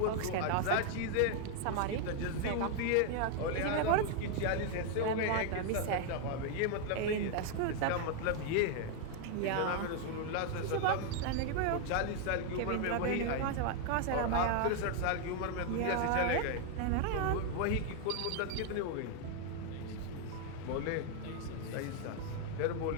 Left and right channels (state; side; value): different; both; correlation 0.00